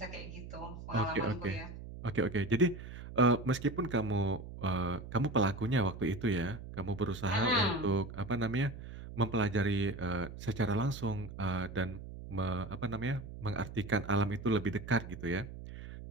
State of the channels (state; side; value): noise; right; hum, 12 dB below the sound